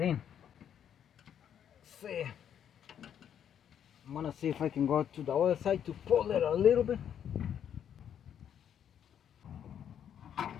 in. Let's see. I'm gonna see if I can go to the other side to pull it a little bit.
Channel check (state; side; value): quieter; right; 9.2 dB